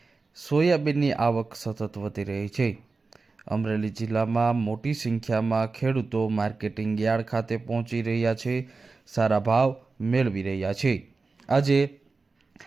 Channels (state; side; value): quieter; left; 4.0 dB